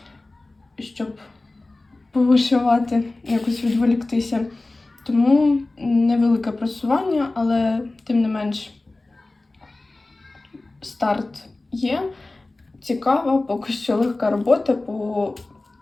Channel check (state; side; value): quieter; right; 3.0 dB